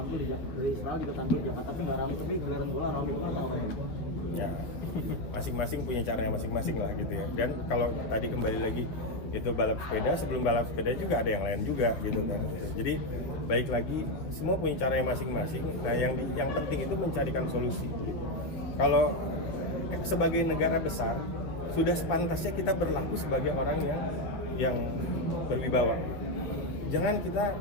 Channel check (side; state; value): right; late; 9.8 ms